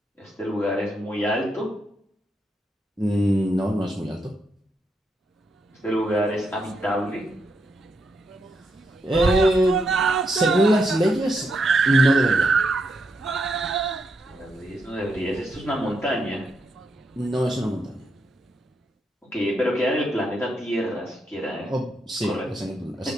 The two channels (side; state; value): both; normal; correlation 0.81